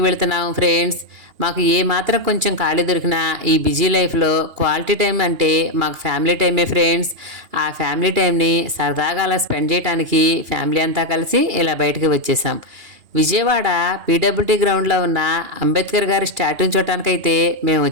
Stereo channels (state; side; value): late; left; 2.8 ms